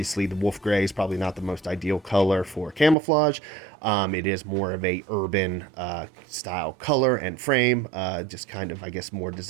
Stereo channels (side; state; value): left; drops out; at 3.0 s